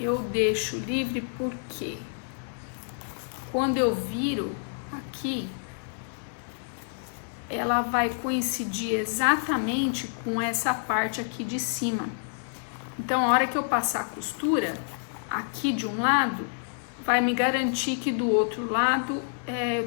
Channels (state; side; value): silent; right; digital silence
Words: deixo livre porque quando eu viro aqui, ela vai coincidir exatamente com essa parte aqui de cima. Então, a hora que eu passar a costura, aqui de um lado, vai me garantir que do outro lado,